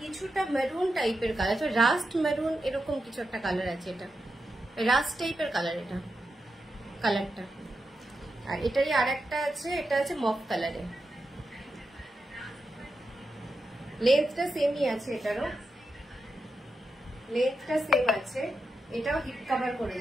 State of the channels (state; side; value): normal; both; correlation 0.88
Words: কিছুটা মেরুন টাইপের কালার, রাস্ট মেরুন এরকম কিছু একটা কালার আছে। এটা রাস্ট টাইপের কালার, এটা কালারটা। আর এটারই আরেকটা আছে, এটা আছে মফ কালারে। লেন্থটা সেমই আছে, এটারও লেন্থটা সেম আছে। এটাও হিপ কভার করে